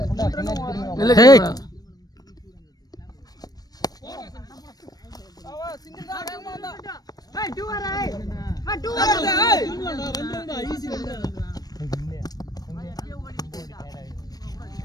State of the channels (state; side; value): late; right; 0.19 ms